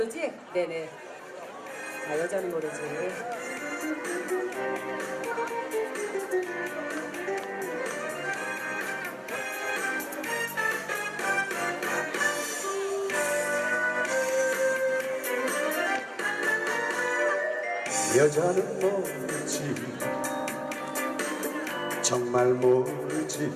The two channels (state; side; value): identical; both; correlation 1.00